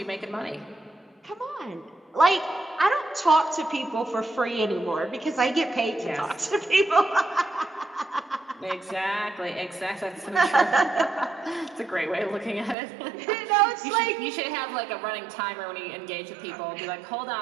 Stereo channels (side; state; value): left; drops out; at 12.8 s